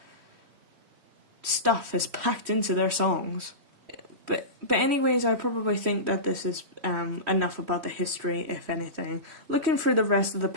stuff is packed into their songs. But anyways, I probably think that this is enough about the history, if anything. Looking through the rest of the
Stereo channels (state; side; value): late; left; 3.1 ms